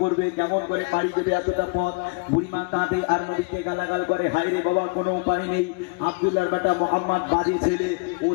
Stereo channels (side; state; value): right; quieter; 31.7 dB